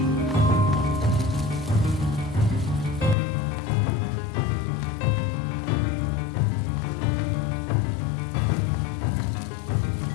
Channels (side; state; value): right; drops out; at 3.2 s